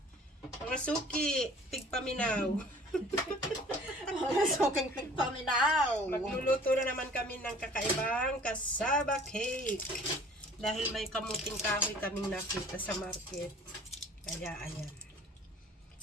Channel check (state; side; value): normal; both; correlation 0.50